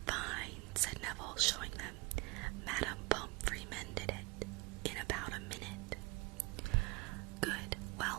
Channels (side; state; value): left; quieter; 25.9 dB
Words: Fine, said Neville, showing them. Madame Pomfrey mended it in about a minute. Good.